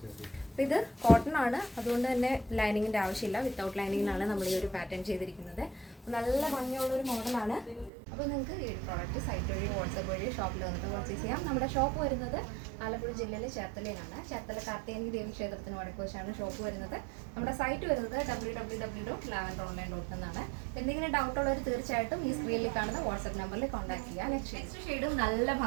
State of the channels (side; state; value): left; drops out; at 7.9 s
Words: അപ്പോൾ ഇത് കോട്ടൺ ആണ്, അതുകൊണ്ട് തന്നെ ലൈനിങ്ങിൻ്റെ ആവശ്യമില്ല. വിത്തൗട്ട് ലൈനിങ്ങിനാണ് നമ്മൾ ഈ ഒരു പാറ്റേൺ ചെയ്തിരിക്കുന്നത്. നല്ല ഭംഗിയുള്ളൊരു മോഡലാണ്. അപ്പോൾ നിങ്ങൾക്ക് ഈ പ്രോഡക്റ്റ് സൈറ്റ് വഴി വാട്സപ്പ് വഴി ഷോപ്പിൽ വന്നിട്ട് പർച്ചേസ് ചെയ്യാം. നമ്മുടെ ഷോപ്പ് വരുന്നത് ആലപ്പുഴ ജില്ലയിലെ ചേർത്തലയിലാണ്. ചേർത്തല കാർത്തികേയനി ദേവി ക്ഷേത്രത്തിന് വടക്കുവശമാണ് ഷോപ്പ് വരുന്നത്. നമ്മുടെ സൈറ്റ് വരുന്നത് www.lavenderonline.com എന്നാണ്. എന്തെങ്കിലും ഡൗട്ട് ഉള്ളവർ തീർച്ചയായിട്ടും ഈ സ്ക്രീനിൽ കാണുന്ന വാട്സപ്പ് നമ്പറിൽ കോൺടാക്ട് ചെയ്യുക. നെക്സ്റ്റ് ഷെയ്ഡും നല്ല